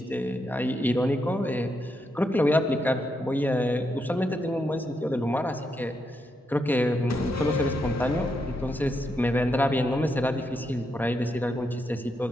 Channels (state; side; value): normal; both; correlation 0.81